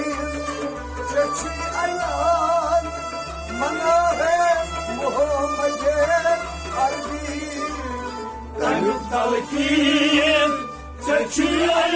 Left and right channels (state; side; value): identical; both; correlation 1.00